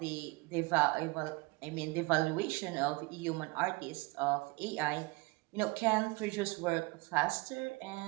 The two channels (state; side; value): quieter; left; 24.9 dB